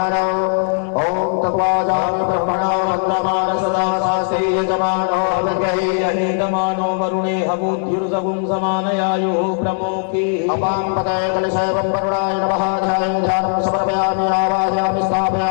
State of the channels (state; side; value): silent; right; 67 dB below the other